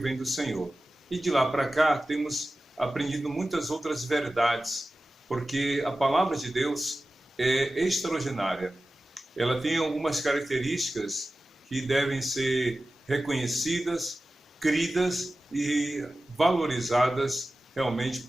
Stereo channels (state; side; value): normal; both; correlation 0.95